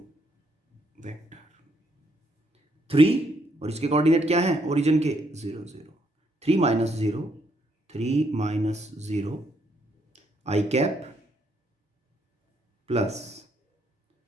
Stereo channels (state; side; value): normal; both; correlation 0.73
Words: वेक्टर 3, और इसके कोऑर्डिनेट क्या है ओरिजिन के 0 0, 3 minus 0, 3 minus 0 i cap plus